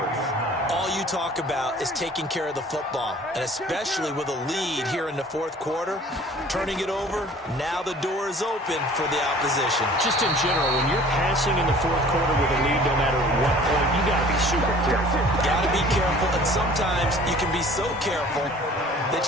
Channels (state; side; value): normal; both; correlation 0.49